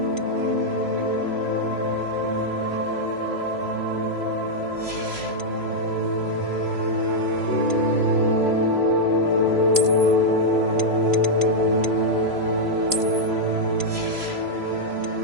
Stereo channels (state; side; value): late; left; 3.0 ms